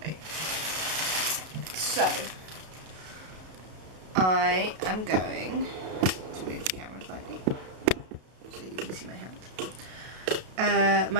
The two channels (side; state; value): left; late; 32 ms